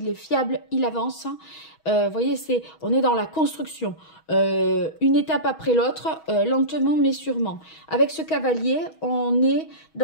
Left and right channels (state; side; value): late; right; 6.3 ms